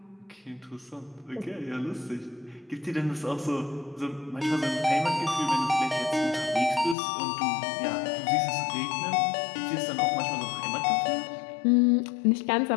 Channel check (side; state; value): right; drops out; at 7.0 s